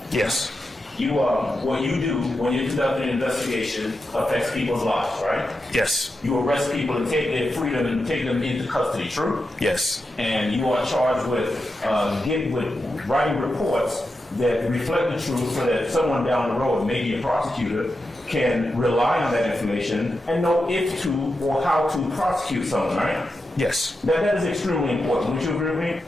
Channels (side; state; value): both; normal; correlation 0.88